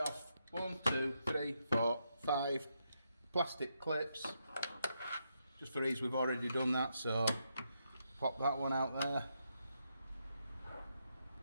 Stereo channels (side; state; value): both; inverted; correlation -0.81